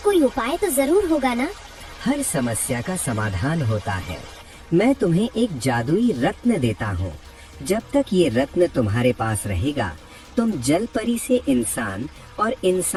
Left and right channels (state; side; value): identical; both; correlation 1.00